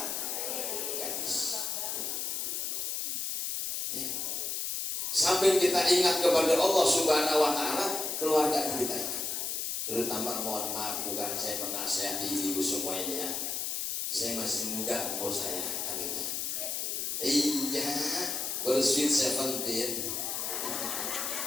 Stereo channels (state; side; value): noise; left; hiss, 2 dB below the sound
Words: gadis. Ya. Sampai kita ingat kepada Allah Subhanahu Wa Taala, keluarga kita ingat. Terutama mohon maaf, bukan saya menasihati ibu semua ini ya. Saya masih muda umur saya kan gitu. Iya, bersweet 17.